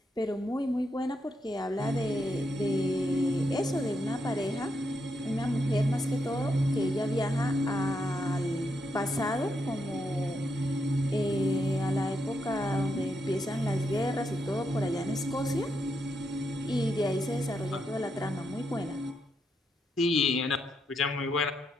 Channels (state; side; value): normal; both; correlation 0.81